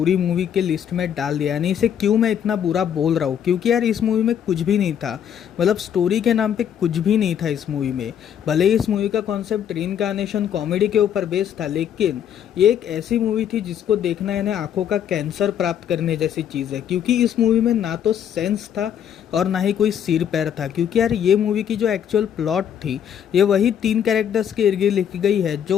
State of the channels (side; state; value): right; quieter; 9.1 dB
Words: मूवी के लिस्ट में डाल दिया, यानी इसे क्यों मैं इतना बुरा बोल रहा हूँ। क्योंकि यार इस मूवी में कुछ भी नहीं था, मतलब स्टोरी के नाम पे कुछ भी नहीं था इस मूवी में। भले ही इस मूवी का कॉन्सेप्ट रीइंकार्नेशन कॉमेडी के ऊपर बेस्ड था, लेकिन ये एक ऐसी मूवी थी जिसको देखना यानी आंखों का कैंसर प्राप्त करने जैसी चीज़ है। क्योंकि इस मूवी में ना तो सेंस था और ना ही कोई सिर पैर था। क्योंकि यार ये मूवी की जो एक्चुअल प्लॉट थी ये वही 3 कैरेक्टर्स के इर्द गिर्द लिखी गई है